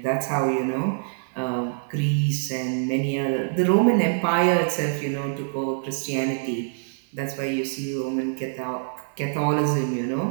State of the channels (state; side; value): silent; left; 56 dB below the other